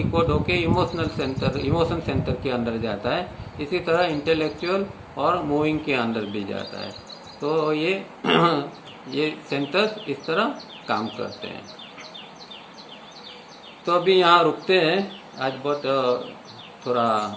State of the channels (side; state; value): both; identical; correlation 1.00